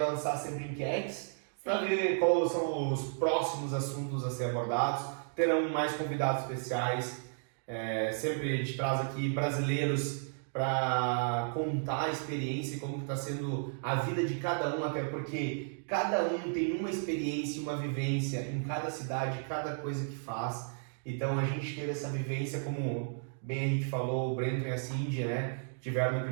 sempre enquetes para ver quais são os próximos assuntos a ser abordados. Terão mais convidados especiais. Sempre a gente traz aqui brasileiros para contar a experiência e como está sendo a vida de cada um, até porque cada um tem uma experiência, uma vivência em cada cidade, cada coisa que faz. Então a gente teve essa vivência, como bem a gente falou, o Brenton e a Cindy, né, tiveram no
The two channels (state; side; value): silent; left; digital silence